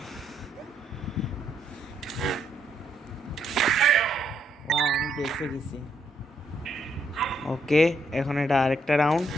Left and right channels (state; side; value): normal; both; correlation 0.75